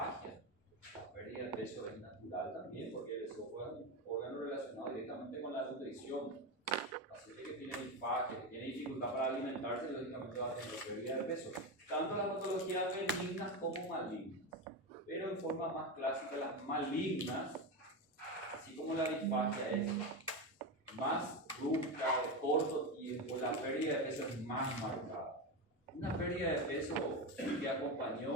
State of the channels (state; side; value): normal; both; correlation 0.15